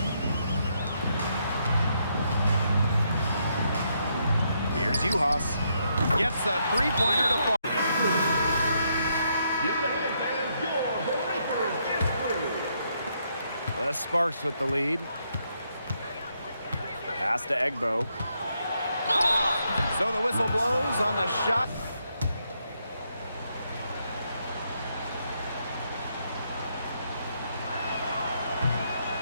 Here's Uhas. Gets the three-pointer to fall. The Sparks with the lead. Pass to Egbo. So the whistle blows on the shot.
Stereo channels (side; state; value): both; inverted; correlation -0.76